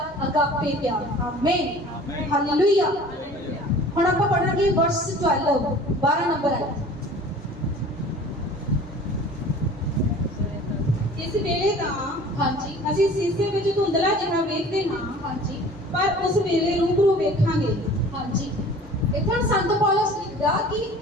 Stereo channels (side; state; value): both; normal; correlation 0.45